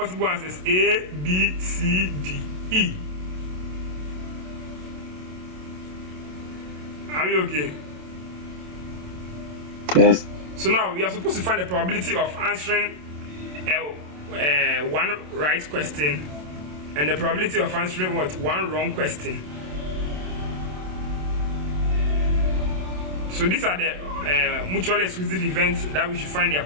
answers: A, B, C, D, E. Are we okay? Yes. So now we are supposed to find the probability of answering one right question and the probability of answering what? One wrong question. So these are the mutually exclusive events that we should find their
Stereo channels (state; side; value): late; left; 27 ms